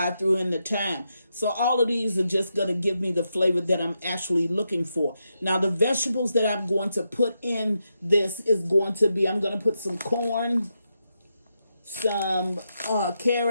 I threw in the thyme. So all of these are just going to give me the flavor that I'm actually looking for. Now the vegetables that I'm going to put in this is going to be, I'm going to put some corn, some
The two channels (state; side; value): inverted; both; correlation -0.85